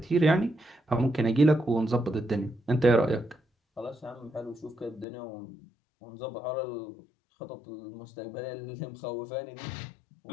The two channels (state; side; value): drops out; right; at 5.1 s